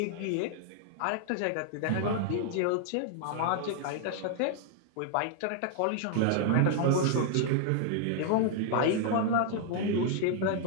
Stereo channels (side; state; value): both; different; correlation 0.00